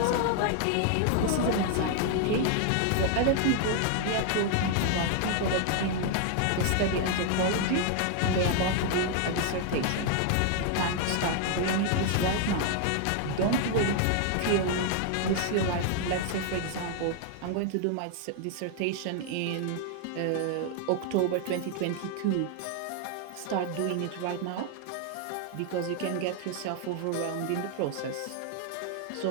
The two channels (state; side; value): different; both; correlation 0.00